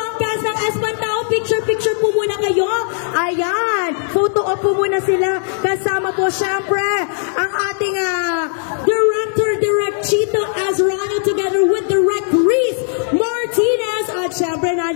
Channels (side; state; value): right; silent; digital silence